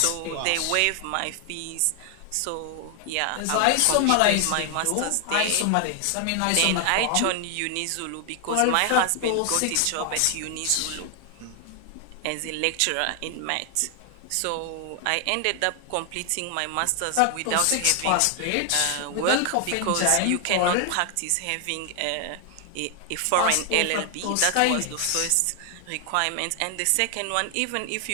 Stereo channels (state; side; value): different; both; correlation 0.00